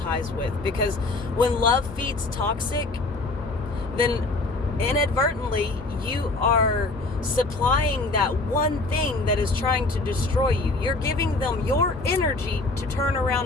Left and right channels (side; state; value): right; quieter; 3.2 dB